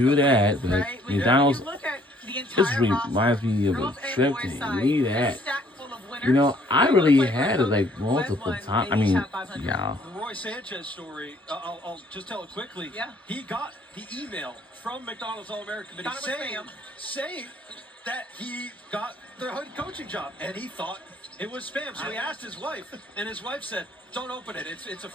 that. But Right? When McDonald's, you look at the this entire reminds me of a girls and trip boys to side, me they're that. stacked full of winners. You know, I They really play had for it like who multiple won, times. they I each mean, have 500. yeah. The Roy Sanchez story, I'll just tell it quickly. Yeah. He got the email from McDonald's All-American Committee Thought it was saying that he got the head coaching job, and he thought it was spam. So he asked his wife, and his wife said, "Don't open it. It's a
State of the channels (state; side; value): normal; both; correlation 0.62